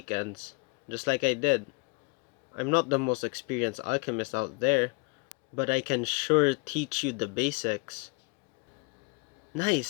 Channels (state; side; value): quieter; right; 32.6 dB